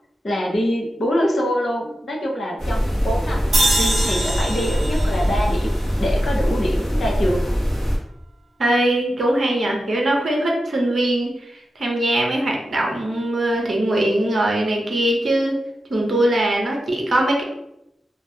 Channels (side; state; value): both; normal; correlation 0.90